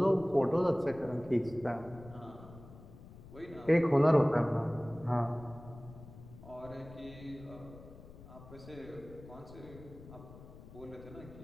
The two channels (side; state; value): left; noise; rumble, 17 dB below the sound